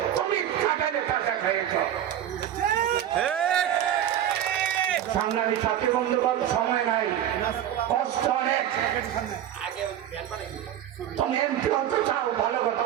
তুমি কাঁঠালে টাকা খাইয়েছ। সংগ্রামী সাথী বন্ধুগণ, সময় নাই, কষ্ট অনেক। তুমি এমপি হতে চাও, ভালো কথা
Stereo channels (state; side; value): quieter; left; 10.9 dB